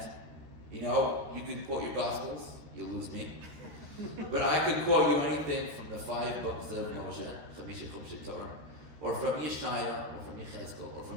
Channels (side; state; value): left; late; 13 ms